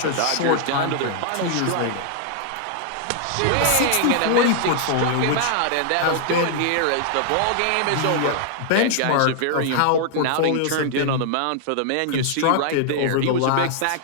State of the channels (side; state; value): both; different; correlation -0.01